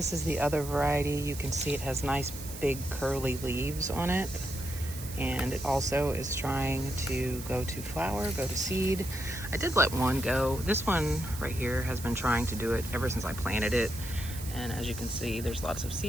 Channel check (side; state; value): right; noise; hiss, 12 dB below the sound